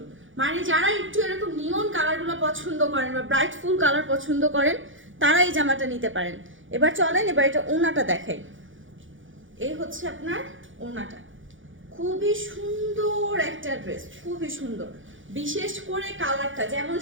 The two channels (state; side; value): late; left; 0.57 ms